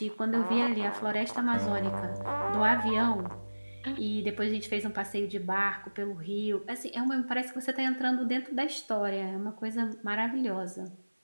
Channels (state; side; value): inverted; both; correlation -1.00